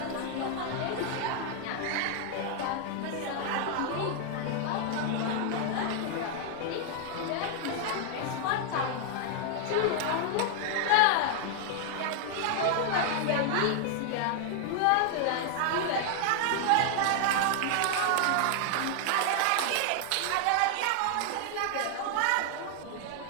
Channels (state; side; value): different; both; correlation 0.00